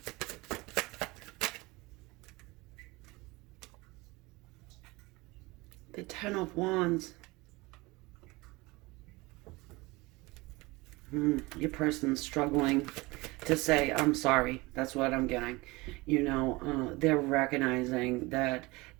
The Ten of Wands. Your person's struggling to say, I'm sorry. That's what I'm getting. You know, they're recognizing that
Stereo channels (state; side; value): quieter; left; 23.0 dB